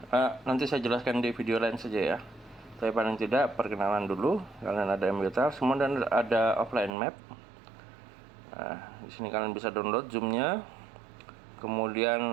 nanti saya jelaskan di video lain saja ya. Tapi paling tidak perkenalan dulu. Kalian ada MBTiles, kemudian ada offline map. Nah, di sini kalian bisa download zoomnya.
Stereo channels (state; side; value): drops out; left; at 6.9 s